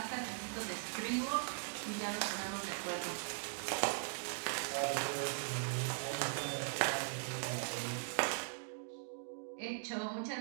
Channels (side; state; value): left; silent; digital silence